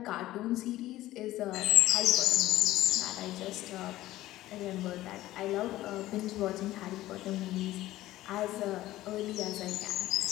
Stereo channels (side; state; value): right; quieter; 15.7 dB